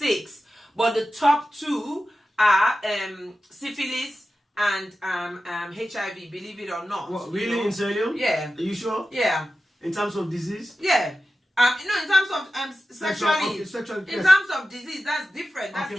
But the top 2 are syphilis and HIV, believe it or not. What, really, in serio? Yeah. Are you sure? Yeah. In terms of disease? Yeah. You know, in terms of sexually, in terms of disease, that's different. That's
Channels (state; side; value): normal; both; correlation 0.93